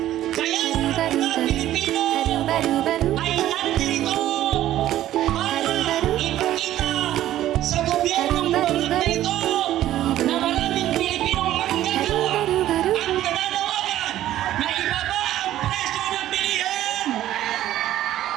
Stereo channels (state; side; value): quieter; left; 13.2 dB